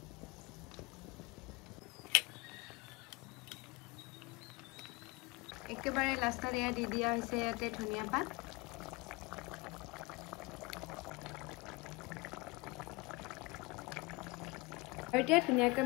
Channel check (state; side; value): quieter; right; 24.9 dB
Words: একেবাৰে লাষ্টত এয়া দি দিয়া হৈছে ইয়াতে ধনিয়া পাত আৰু এতিয়া ধুনীয়াকৈ